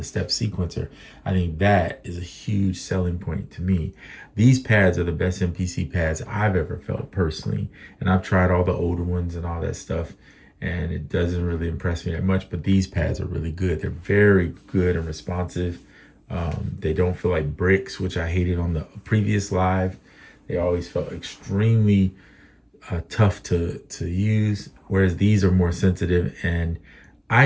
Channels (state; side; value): identical; both; correlation 1.00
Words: step sequencer. I think that is a huge selling point to me. These pads are the best MPC pads I've ever felt personally. And I've tried all the older ones and all that stuff, and it doesn't really impress me that much, but these pads are really good. They're very good and responsive. They don't feel like bricks, which I hated on the previous live. They always felt extremely tough to use, whereas these are more sensitive, and I